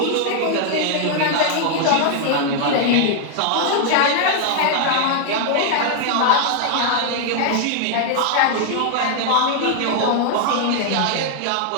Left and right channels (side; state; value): both; different; correlation 0.00